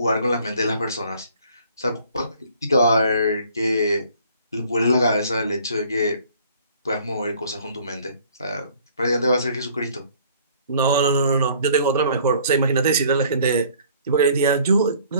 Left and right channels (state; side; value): inverted; both; correlation -0.56